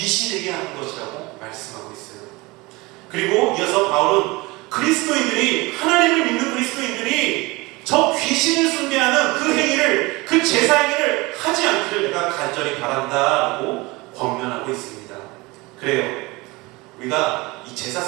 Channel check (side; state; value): left; quieter; 23.3 dB